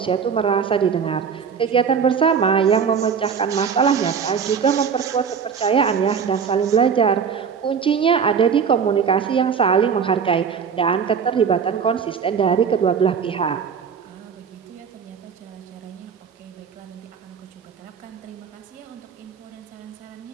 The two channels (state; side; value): quieter; left; 6.7 dB